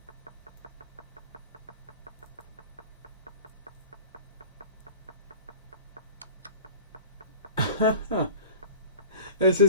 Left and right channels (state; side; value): inverted; both; correlation -0.39